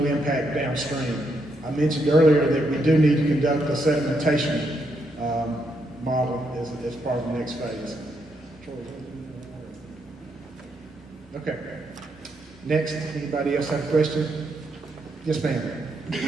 impact downstream. I mentioned earlier that we do need to conduct a sedimentation model as part of the next phase. Okay. Next, anybody else have a question? Yes, ma'am.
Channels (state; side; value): normal; both; correlation 0.78